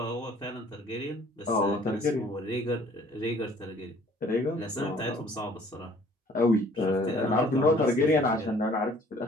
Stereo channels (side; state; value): both; normal; correlation 0.55